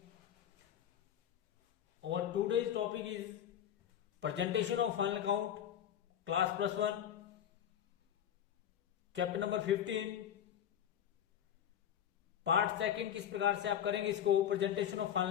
Our today's topic is presentation of final account, class +1, chapter number 15, part second. किस प्रकार से आप करेंगे इसको presentation of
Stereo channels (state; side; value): quieter; right; 9.9 dB